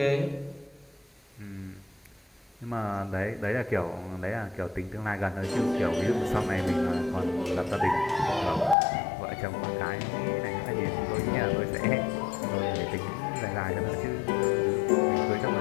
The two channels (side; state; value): right; drops out; at 8.8 s